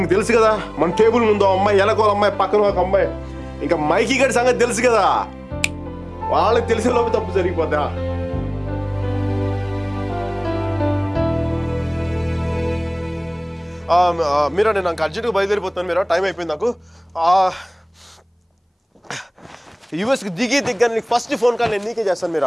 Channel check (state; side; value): identical; both; correlation 1.00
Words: తెలుసు కదా, మన టేబుల్ ముందు అమ్మాయి, ఎలకోల అమ్మాయి, పక్కన ఒక అమ్మాయి, ఇంకా మైకీ గారి సంగతి తెలుసు కదా, వాళ్ళకి తెలిసే లోపు తప్పు జరిగిపోద్దా. మీరా, నేను నాకు అర్జెంట్గా బయలుదేరిపోతాను. మీరా, టైం అయిపోయింది నాకు. యూఎస్కి దిగ్గానే నీకు ఫస్ట్ ఫోన్ కాల్ నేను నీకే చేస్తాను